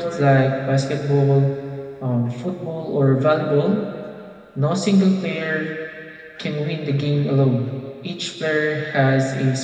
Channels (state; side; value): identical; both; correlation 1.00